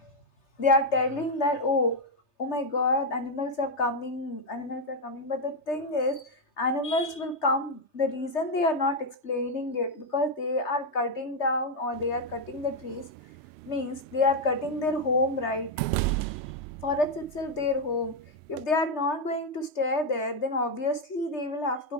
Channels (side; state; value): right; late; 3.3 ms